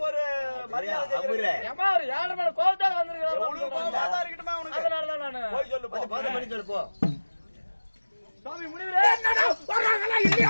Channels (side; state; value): both; inverted; correlation -1.00